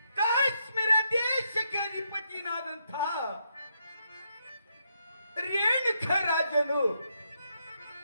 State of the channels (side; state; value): both; inverted; correlation -0.79